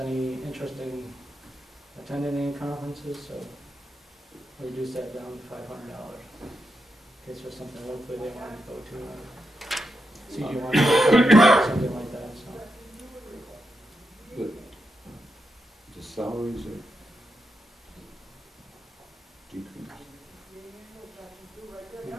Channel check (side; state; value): both; normal; correlation 0.86